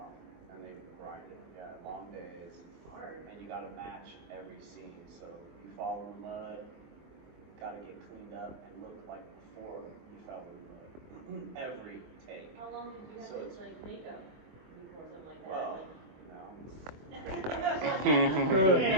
and they grinded. Yeah, long days, and you got to match every scene. So you fall in the mud, got to get cleaned up and look like before you fell in the mud. Every take. How long did you have So to like makeup before something like that? Well, Like,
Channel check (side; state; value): left; late; 23 ms